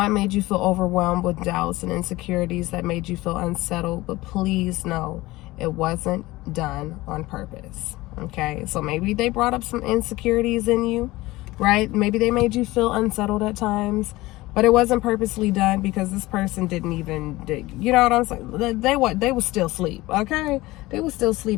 made you feel overwhelmed with doubts and insecurities that made you feel unsettled, but please know it wasn't done on purpose. Okay, so maybe they brought up some insecurities in you, right? Maybe they made you feel unsettled at times, but it wasn't purposely done, because this person didn't even, you know what I'm saying? They were still asleep, okay? They were still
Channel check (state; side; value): quieter; right; 19.3 dB